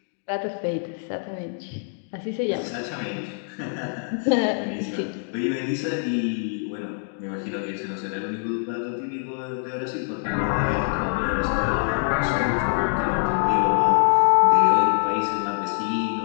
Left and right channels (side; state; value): right; silent; 59 dB below the other